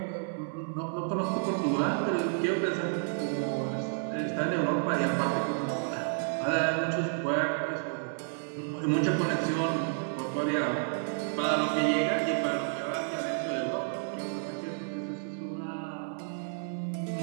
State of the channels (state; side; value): silent; left; 57 dB below the other